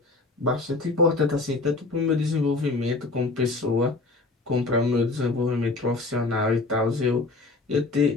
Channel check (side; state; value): right; quieter; 3.4 dB